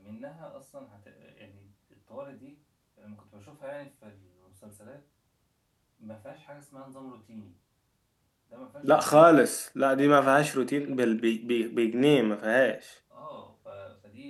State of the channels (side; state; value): both; identical; correlation 1.00